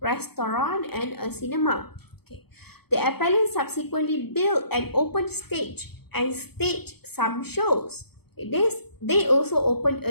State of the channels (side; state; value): right; late; 0.97 ms